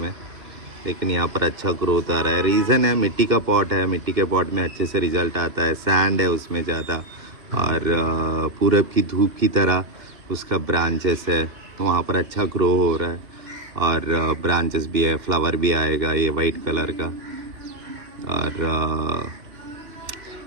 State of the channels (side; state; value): left; late; 2.9 ms